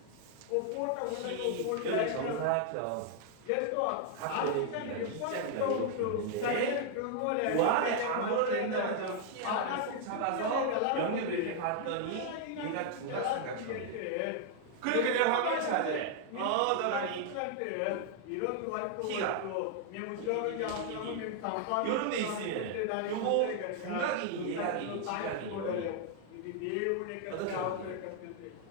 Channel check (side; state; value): both; different; correlation 0.00